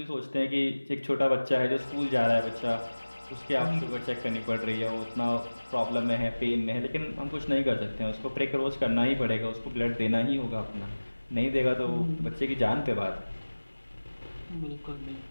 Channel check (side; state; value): both; inverted; correlation -1.00